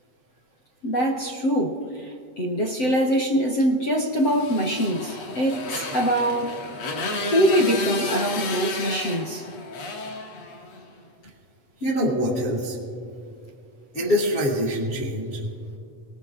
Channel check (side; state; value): right; late; 7.8 ms